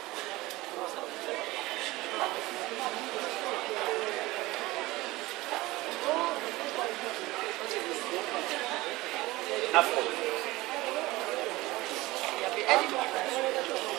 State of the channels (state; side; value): quieter; left; 19.8 dB